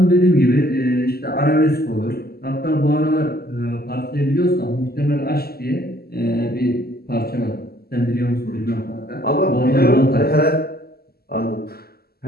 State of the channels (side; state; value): right; late; 0.45 ms